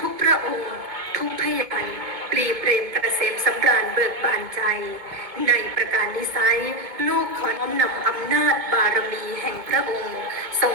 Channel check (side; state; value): left; late; 2.2 ms